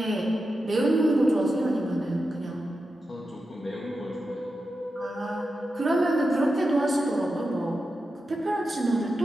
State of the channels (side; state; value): both; normal; correlation 0.90